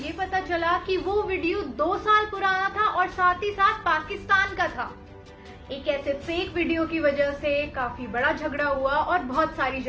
पता चला कि वो वीडियो 2 साल पुराना था और साथ ही साथ पाकिस्तान का था। एक ऐसे फेक वीडियो की वजह से काफी बड़ा झगड़ा हुआ और बहुत सारी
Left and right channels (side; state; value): both; identical; correlation 1.00